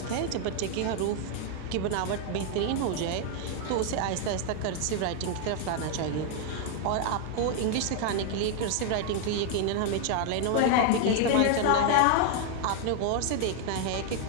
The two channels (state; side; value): different; both; correlation 0.00